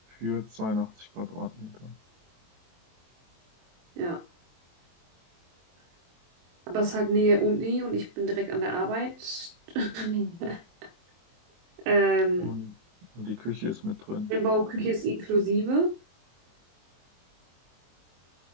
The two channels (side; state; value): left; late; 23 ms